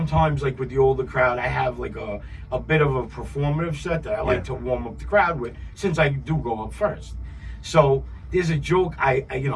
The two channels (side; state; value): both; identical; correlation 1.00